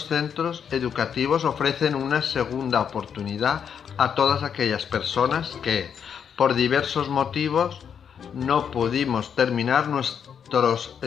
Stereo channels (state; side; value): quieter; right; 7.7 dB